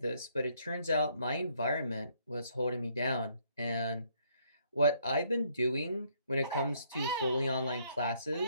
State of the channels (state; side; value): inverted; both; correlation -0.68